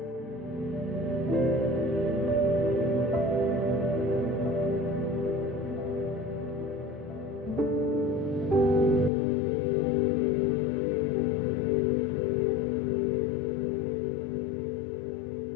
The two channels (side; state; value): right; drops out; at 9.1 s